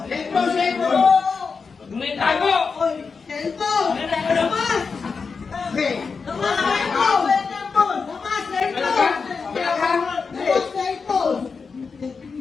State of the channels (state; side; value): quieter; right; 5.1 dB